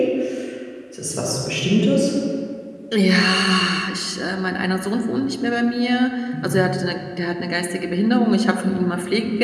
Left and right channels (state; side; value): identical; both; correlation 1.00